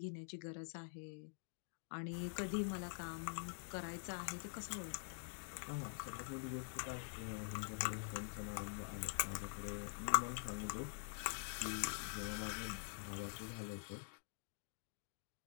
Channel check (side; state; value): right; silent; digital silence